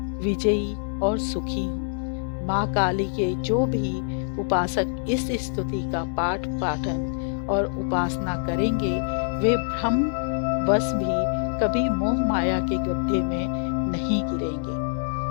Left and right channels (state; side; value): silent; right; digital silence